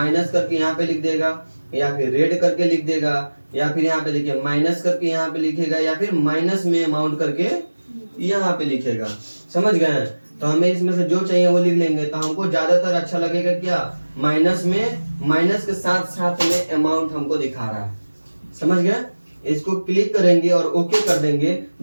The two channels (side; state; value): both; inverted; correlation -1.00